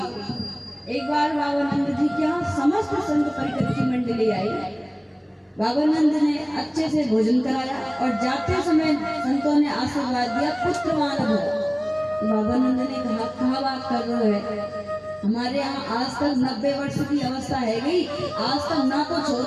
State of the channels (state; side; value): identical; both; correlation 1.00